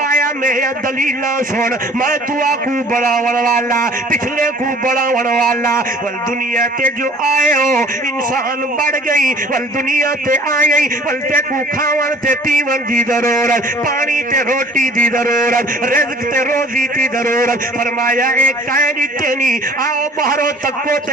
میں دلیلہ سن میں دعا کو بڑھاون والا پچھلے کو بڑھاون والا والدنیا تے جو آئے ہو انسان بڑھ گئی والدنیا تے آئے والتے کو کھاون تے پیون دی ضرورت پانی تے روٹی دی ضرورت رزق تے روزی دی ضرورت فرمایا ایک کائنی تینی آؤ بہرو تکو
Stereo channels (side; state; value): both; normal; correlation 0.50